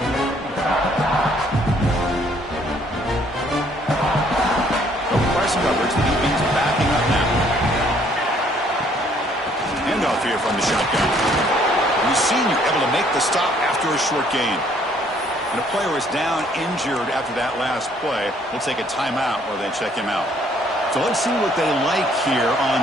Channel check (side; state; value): both; normal; correlation 0.63